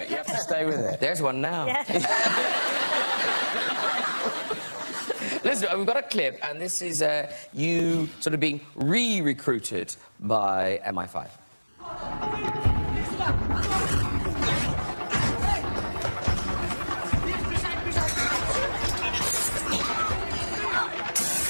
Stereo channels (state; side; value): inverted; both; correlation -1.00